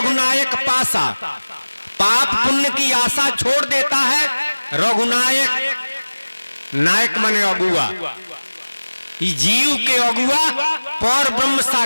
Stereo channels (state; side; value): inverted; both; correlation -1.00